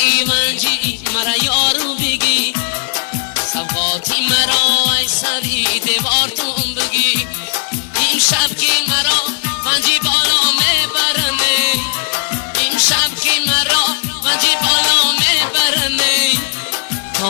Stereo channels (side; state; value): right; silent; 57 dB below the other